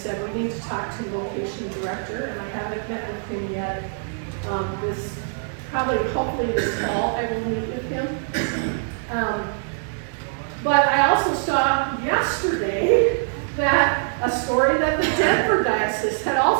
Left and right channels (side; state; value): left; silent; digital silence